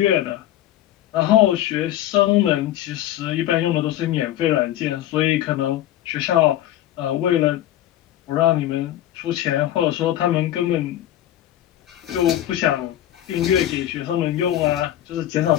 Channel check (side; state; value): right; quieter; 12.8 dB